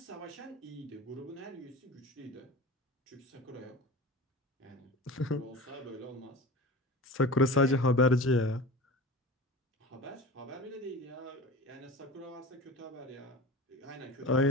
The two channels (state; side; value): normal; both; correlation 0.34